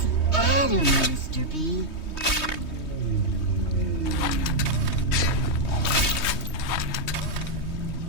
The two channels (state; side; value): late; right; 3.2 ms